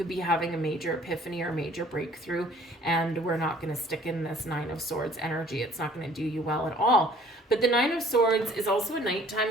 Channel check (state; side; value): normal; both; correlation 0.55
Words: be having a major epiphany or major breakthrough, and we're not going to stick in this Nine of Swords energy. It's not going to do you well at all. But the Nine of Swords is also a